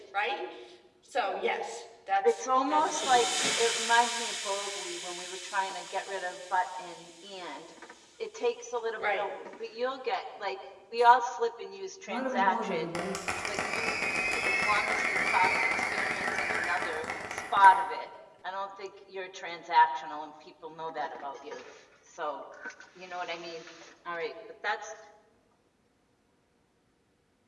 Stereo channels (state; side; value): identical; both; correlation 1.00